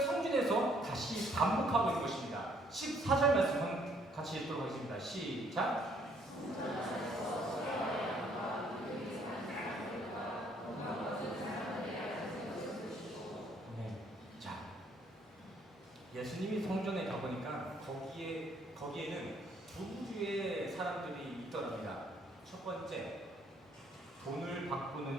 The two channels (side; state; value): both; normal; correlation 0.65